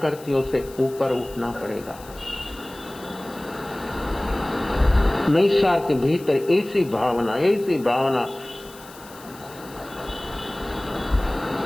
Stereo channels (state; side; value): noise; left; hiss, 20 dB below the sound